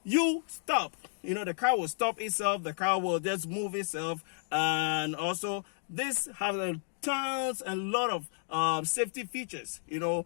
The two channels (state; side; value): silent; right; digital silence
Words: you stop, you know, the car will stop itself, the car will just move itself. And also this has a tons and lot of safety features. You know,